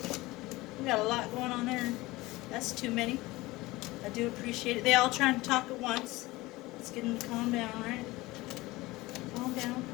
We got a lot going on there. That's too many. I do appreciate it. They all trying to talk at once. Let's get them to calm down, right? Calm down.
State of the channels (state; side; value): quieter; right; 20.2 dB